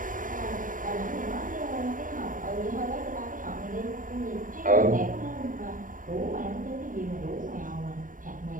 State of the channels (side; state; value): left; late; 0.39 ms